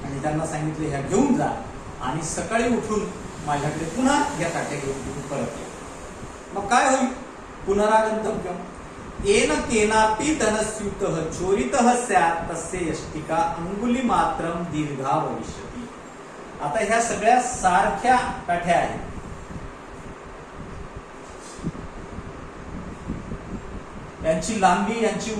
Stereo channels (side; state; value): both; identical; correlation 1.00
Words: आणि त्यांना सांगितले ह्या घेऊन जा आणि सकाळी उठून माझ्याकडे पुन्हा या काठ्या घेऊन परत या. मग काय होईल? पुनरागंतव्यम. येन केनापि धनस्यूतः चोरितः स्यात् तस्य यष्टिका अंगुली मात्रम दीर्घा भविष्यति. आता ह्या सगळ्या सारख्या काठ्या आहेत. यांची लांबी, यांची